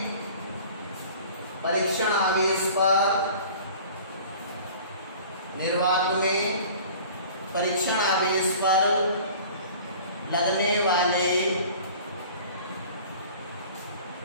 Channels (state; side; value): inverted; both; correlation -0.45